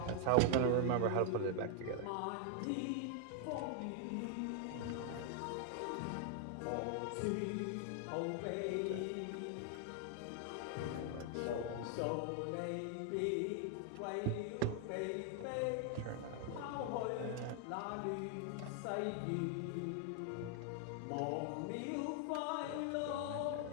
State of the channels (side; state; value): both; different; correlation 0.00